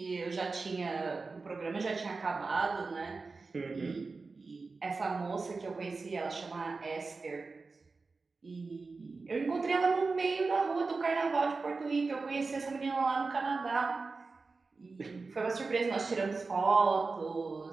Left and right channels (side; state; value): left; quieter; 4.1 dB